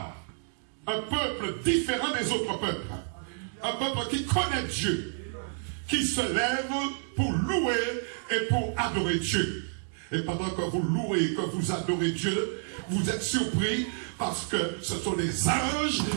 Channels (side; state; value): left; silent; digital silence